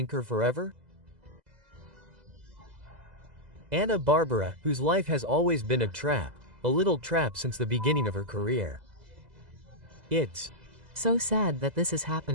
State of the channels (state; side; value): late; left; 2.0 ms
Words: her forever? Ana Bárbara, whose life has always been a trap, a little trap since the beginning of her career. It's So sad that this is